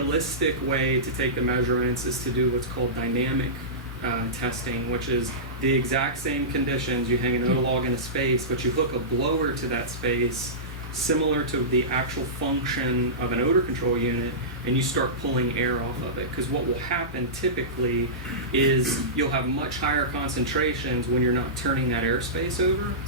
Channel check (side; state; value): both; normal; correlation -0.19